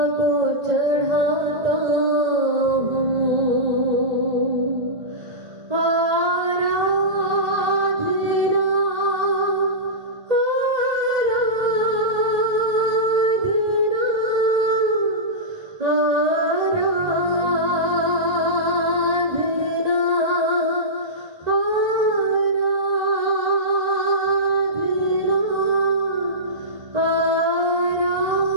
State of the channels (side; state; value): left; late; 1.8 ms